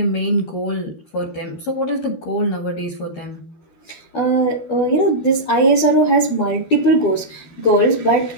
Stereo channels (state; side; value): late; right; 13 ms